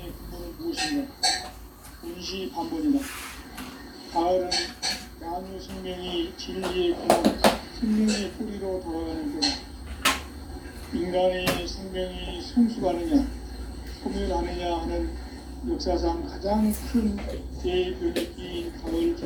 근본은 무엇인가? 운시반본이다. 가을은 만유 생명이 진리의 근원, 생명의 뿌리로 돌아가는 때다. 인간의 생명이 성숙하느냐, 소멸하느냐 하는 역사상 가장 큰 대변혁기인 가을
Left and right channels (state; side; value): identical; both; correlation 1.00